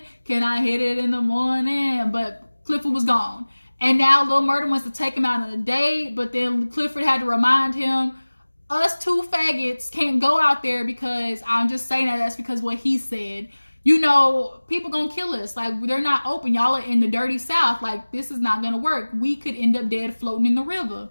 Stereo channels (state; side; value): inverted; both; correlation -1.00